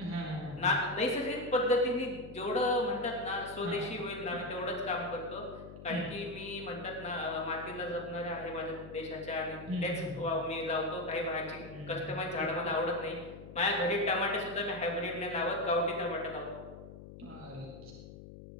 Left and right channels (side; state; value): left; noise; hum, 14 dB below the sound